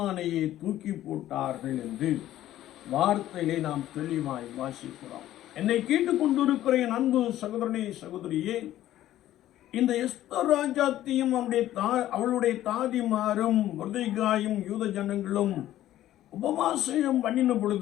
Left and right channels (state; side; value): quieter; right; 13.4 dB